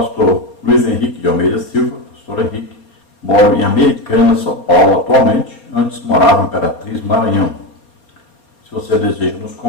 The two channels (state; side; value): late; right; 4.3 ms